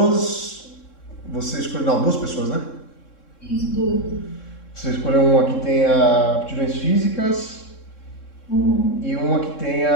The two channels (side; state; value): right; late; 3.7 ms